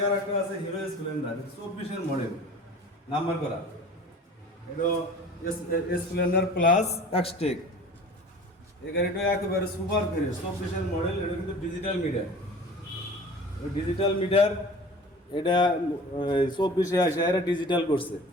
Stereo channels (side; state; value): both; normal; correlation 0.42